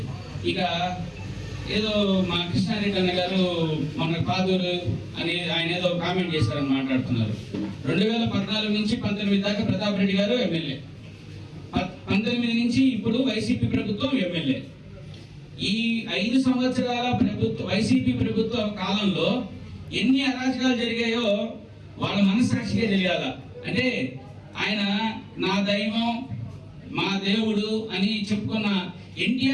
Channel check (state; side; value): identical; both; correlation 1.00